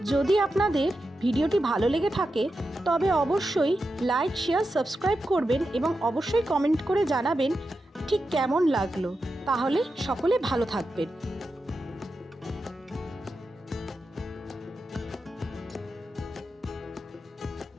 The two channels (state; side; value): normal; both; correlation 0.89